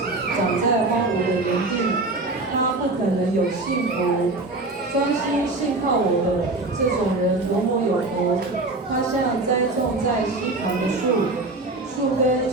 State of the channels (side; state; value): left; quieter; 3.1 dB